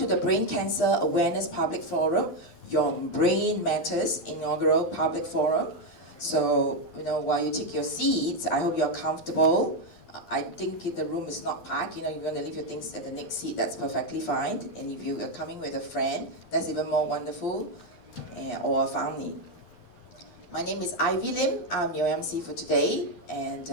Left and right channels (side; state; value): right; late; 11 ms